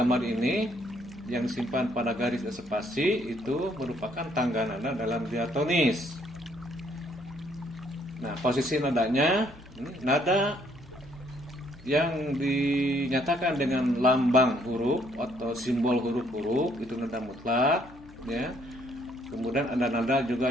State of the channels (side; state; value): left; noise; hum, 23 dB below the sound